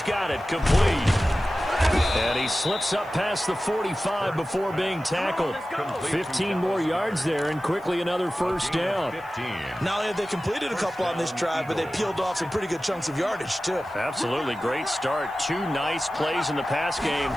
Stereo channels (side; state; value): right; noise; hiss, 28 dB below the sound